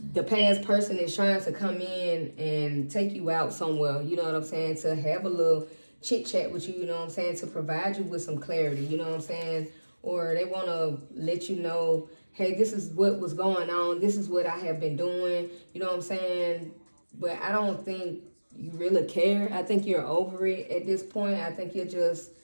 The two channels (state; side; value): inverted; both; correlation -1.00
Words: the past person is trying to come in and take you out somewhere, you know what I'm saying, to have a little chit chat with you, you know what I'm saying, to provide you with some clarity, you know what I'm saying, or they want to let you know hey, this is what was going on. This is what I have been doing. You know what I'm saying? But I don't think you really care. I think you're over it at this point. I think you're just